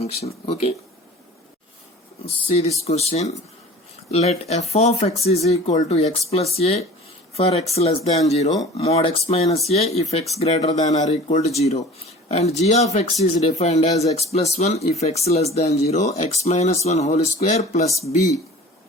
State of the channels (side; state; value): both; normal; correlation 0.42